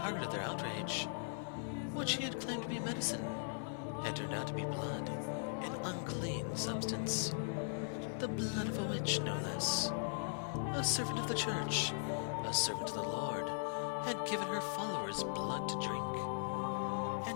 of their outrage. What she had claimed to be medicine had turned out to be blood, an unclean substance. The blood of a witch, no less. A servant of the church, a servant of the Lord, had given her followers blood to drink.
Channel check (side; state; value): right; silent; 52 dB below the other